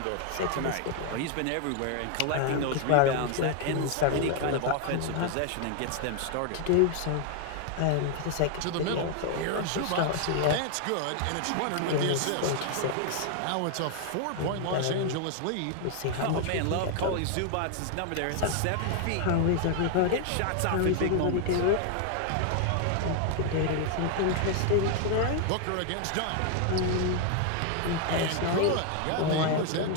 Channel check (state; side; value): different; both; correlation 0.00